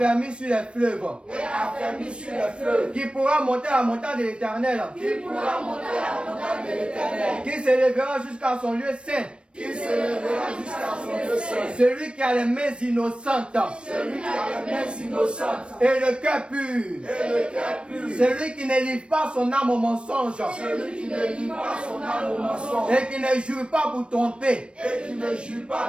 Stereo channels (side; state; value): left; late; 0.058 ms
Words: sur les fleuves. Et affermi sur les fleuves. Qui pourra monter à la montagne de l'Éternel. Qui pourra monter à la montagne de l'Éternel. Qui s'élèvera jusqu'à son lieu saint. Qui se lèvera jusqu'à son lieu saint. Celui qui a les mains innocentes. Celui qui a les mains innocentes. Et le cœur pur. Et le cœur pur. Celui qui ne livre pas son âme au mensonge. Celui qui ne livre pas son âme au mensonge. Et qui ne jure pas pour tromper. Et qui ne jure